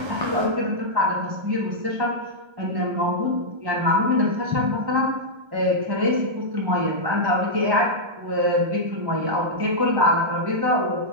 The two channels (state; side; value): late; left; 1.3 ms